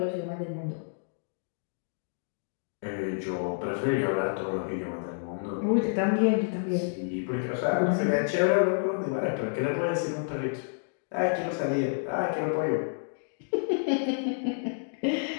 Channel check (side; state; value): right; silent; digital silence